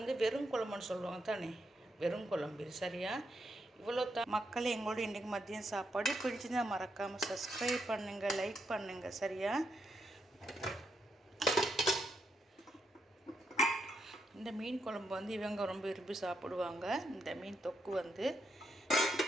வெறும் குழம்புன்னு சொல்லுவாங்க தானே, வெறும் குழம்பு. சரியா? இவ்வளோ தான் மக்கள் எங்களோட இன்றைக்கு மதியம் சாப்பாடு. பிடிச்சிருந்தால் மறக்காமல் சப்ஸ்கிரைப் பண்ணுங்கள், லைக் பண்ணுங்கள். சரியா? இந்த மீன் குழம்பு இவங்க ரொம்ப விரும்பி சாப்பிடுவாங்க. இந்த மீன் தொக்கு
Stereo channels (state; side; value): normal; both; correlation 0.80